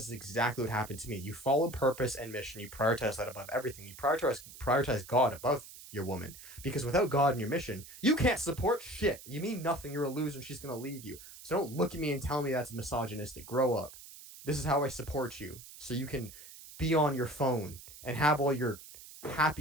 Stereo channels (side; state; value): right; noise; hiss, 16 dB below the sound